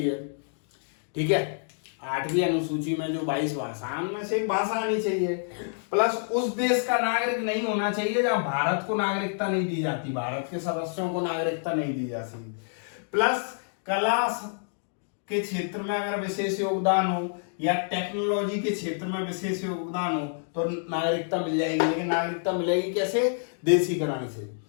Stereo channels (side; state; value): right; silent; digital silence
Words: ठीक है, 8वीं अनुसूची में जो 22 भाषाओं में से एक भाषा आनी चाहिए। प्लस उस देश का नागरिक नहीं होना चाहिए जहां भारत को नागरिकता नहीं दी जाती, भारत के सदस्यों को नागरिकता नहीं दी जाती। प्लस कला के क्षेत्र में अगर विशेष योगदान हो या टेक्नोलॉजी के क्षेत्र में विशेष योगदान हो तो नागरिकता मिल जाएगी। लेकिन नागरिकता मिलेगी कैसे? देशीकरण से।